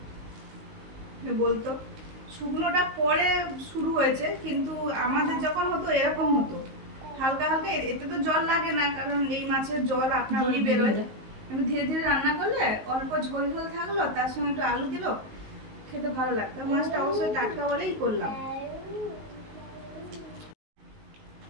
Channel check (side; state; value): left; late; 19 ms